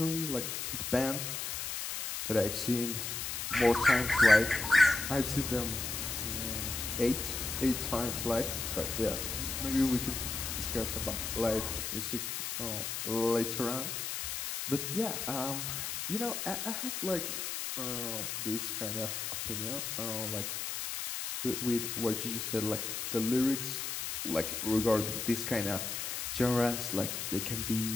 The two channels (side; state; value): left; noise; hiss, 3 dB below the sound